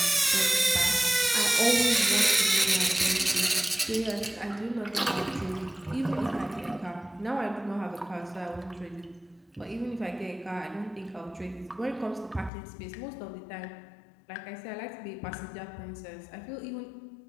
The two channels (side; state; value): right; drops out; at 12.5 s